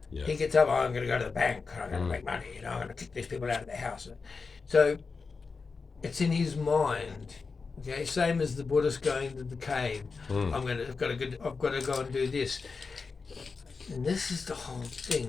He gets up, I'm going to go to the bank, I'm going to make money, I'm going to kick these people out of their house. So it's in his mind. Okay, same as the Buddhist going to the cave. I've got to go and do this. And this is the whole thing.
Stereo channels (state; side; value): quieter; right; 4.7 dB